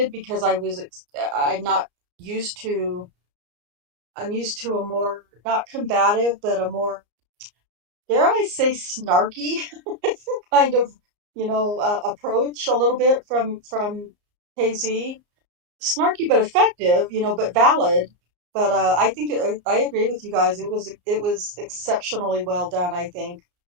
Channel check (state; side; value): late; left; 34 ms